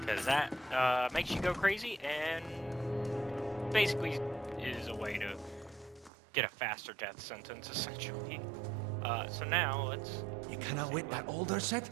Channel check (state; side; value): drops out; left; at 6.1 s